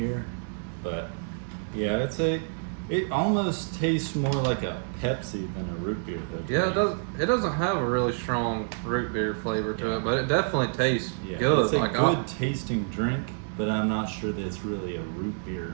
but yeah, It almost tastes more like a Pepsi than a root beer, though. to Yeah, me. it does. It doesn't have a really strong root beer flavor to Yeah. it, but it definitely tastes Yeah, good. it's a like good tasting drink, but I'm not sure that it's really a root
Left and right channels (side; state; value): left; silent; digital silence